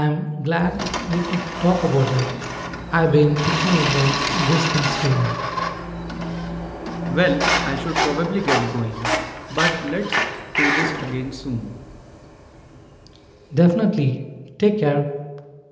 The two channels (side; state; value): both; identical; correlation 1.00